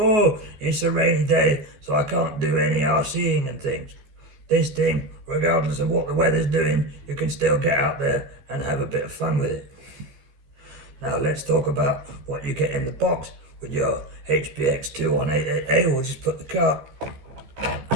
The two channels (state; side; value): late; left; 15 ms